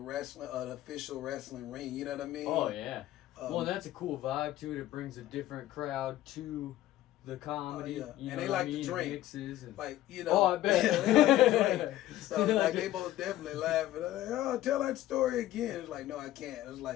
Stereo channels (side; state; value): right; quieter; 14.4 dB